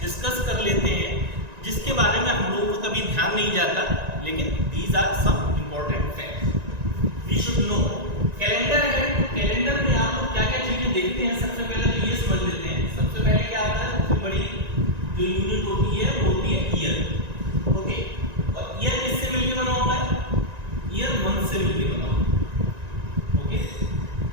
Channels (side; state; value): left; late; 1.9 ms